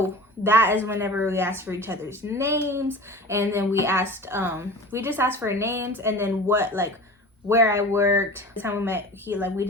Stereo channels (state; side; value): normal; both; correlation 0.37